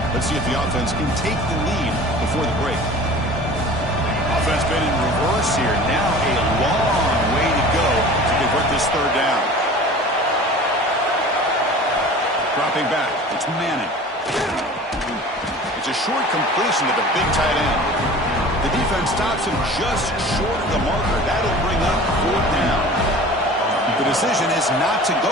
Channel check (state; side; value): normal; both; correlation 0.41